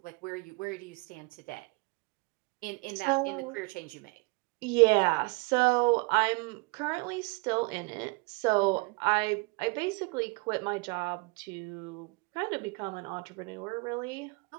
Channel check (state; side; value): quieter; left; 28.7 dB